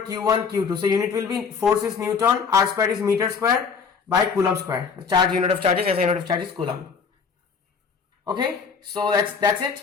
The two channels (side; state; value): right; quieter; 5.7 dB